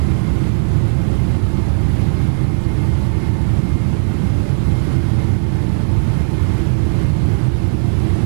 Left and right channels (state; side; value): silent; left; 66 dB below the other